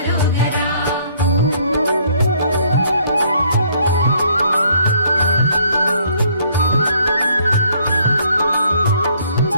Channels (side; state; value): both; inverted; correlation -0.64